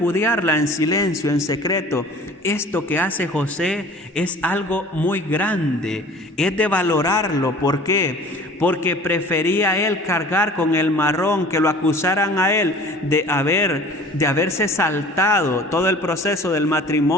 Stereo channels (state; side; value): normal; both; correlation 0.45